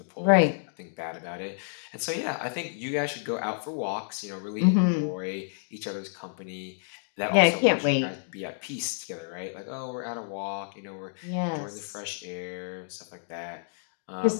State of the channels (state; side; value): silent; right; digital silence